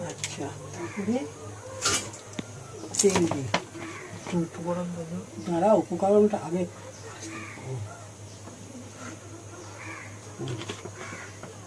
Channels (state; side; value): identical; both; correlation 1.00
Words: আচ্ছা তেল দিই। দাঁড়া উপকরণটা আগে